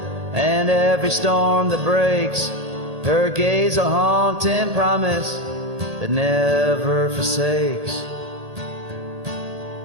and every storm that breaks, her gaze a haunting promise that never forsakes.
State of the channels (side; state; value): left; late; 1.8 ms